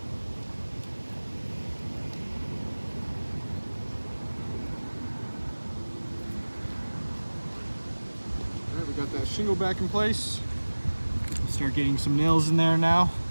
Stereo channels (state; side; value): inverted; both; correlation -1.00